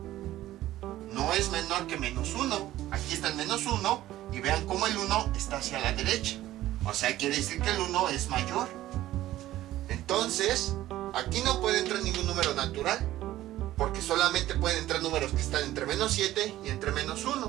no es menor que menos 1. Aquí está el menos 1. Y vean cómo el 1 está hacia la derecha. O sea, quiere decir que el 1 es mayor. Entonces, aquí no puede entrar ningún número natural, porque solamente pueden entrar números que están entre menos 7 y entre menos 1.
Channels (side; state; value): left; quieter; 14.7 dB